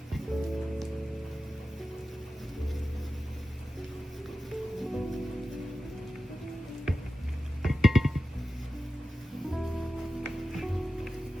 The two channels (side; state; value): both; normal; correlation 0.94